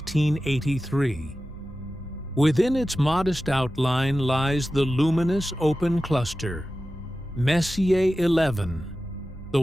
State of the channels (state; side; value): normal; both; correlation 0.94